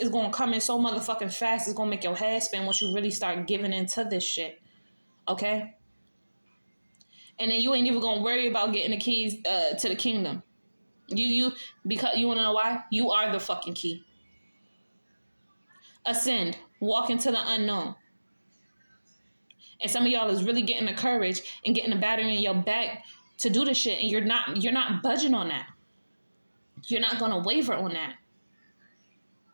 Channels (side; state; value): both; inverted; correlation -1.00